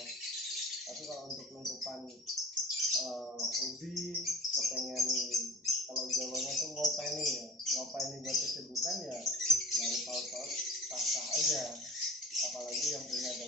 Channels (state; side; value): normal; both; correlation 0.39